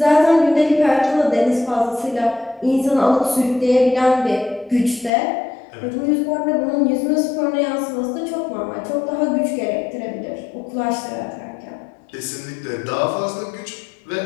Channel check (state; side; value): drops out; right; at 5.1 s